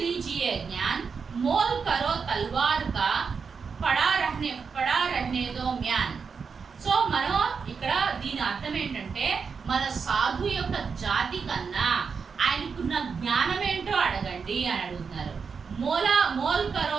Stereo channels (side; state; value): left; quieter; 5.6 dB